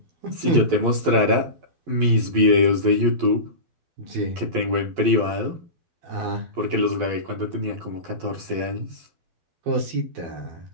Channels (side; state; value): left; late; 11 ms